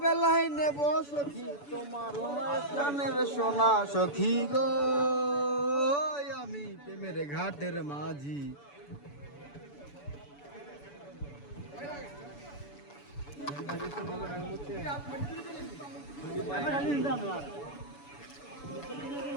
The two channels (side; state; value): right; late; 7.0 ms